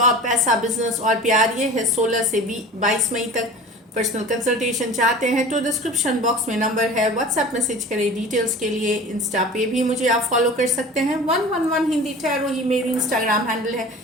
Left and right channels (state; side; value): normal; both; correlation 0.38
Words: पैसा, बिजनेस और प्यार। ये है 16 से 22 मई तक। पर्सनल कंसल्टेशन चाहते हैं तो डिस्क्रिप्शन बॉक्स में नंबर है, व्हाट्सएप मैसेज करें डिटेल्स के लिए। इंस्टा पे भी मुझे आप फॉलो कर सकते हैं। 111 हिंदी टैरो ही मेरी इंस्टाग्राम हैंडल है।